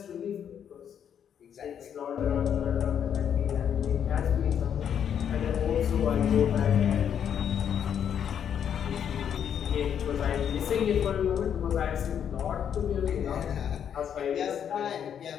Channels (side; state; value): right; quieter; 8.6 dB